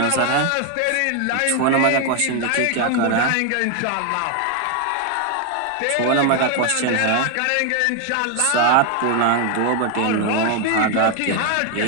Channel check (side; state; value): both; different; correlation 0.01